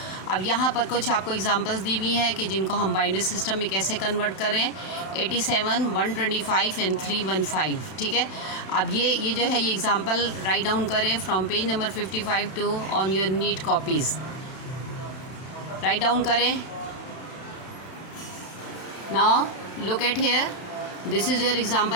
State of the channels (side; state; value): right; late; 31 ms